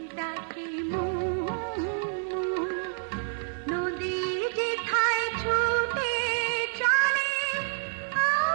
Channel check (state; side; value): silent; left; digital silence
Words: ডাকে নদী যেথায় ছুটে চলে